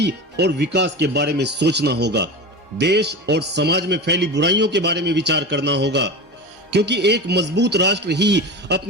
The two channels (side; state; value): both; normal; correlation 0.27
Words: और विकास के बारे में सोचना होगा। देश और समाज में फैली बुराइयों के बारे में विचार करना होगा, क्योंकि एक मजबूत राष्ट्र ही